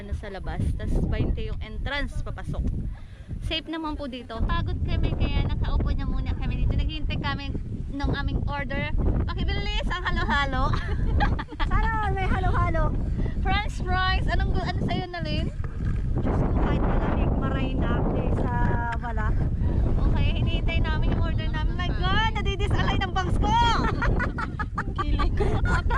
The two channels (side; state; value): both; identical; correlation 1.00